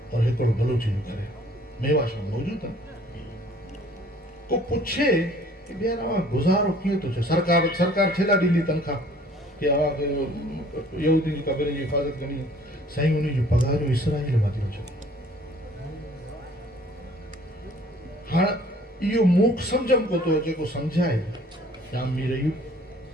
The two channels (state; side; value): normal; both; correlation 0.55